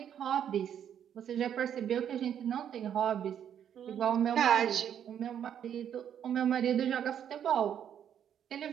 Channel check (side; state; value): left; quieter; 9.2 dB